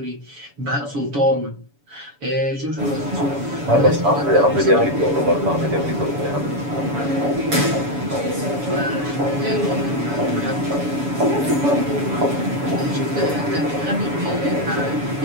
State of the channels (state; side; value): late; left; 7.1 ms